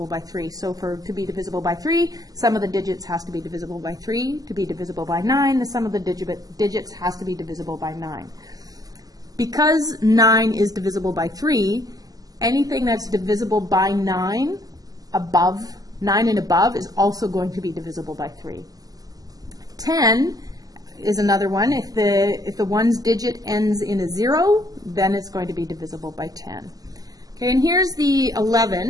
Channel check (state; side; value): late; left; 0.18 ms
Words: by 3. So to be divisible by 3, sum of the digits has to be divisible by 3. To be divisible by 9, the sum of the digits has to be divisible by 9. Because 9 is divisible by 3, anything that's divisible by 9 and above is also going to be divisible by 3. 10 is another one. If the 1's digit ends in a 0, then it's going to be divisible by 10. Okay, and here's the